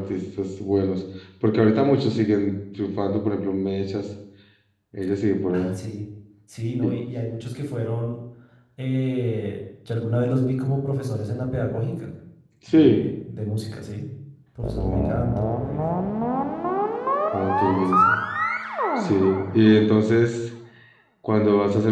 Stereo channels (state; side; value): identical; both; correlation 1.00